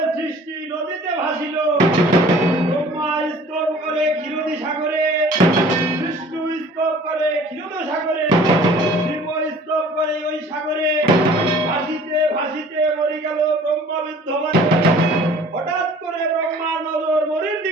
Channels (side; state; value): both; normal; correlation 0.50